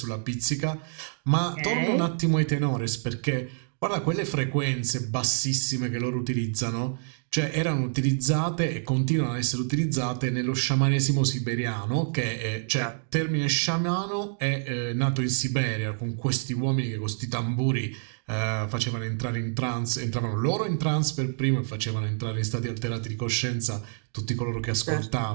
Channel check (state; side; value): silent; left; digital silence